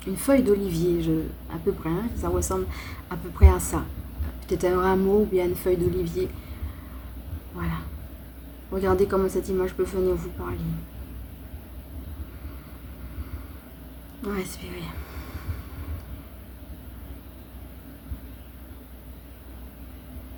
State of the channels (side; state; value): both; identical; correlation 1.00